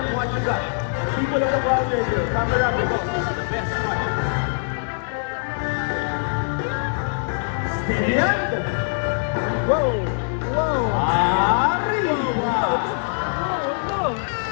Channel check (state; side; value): silent; right; digital silence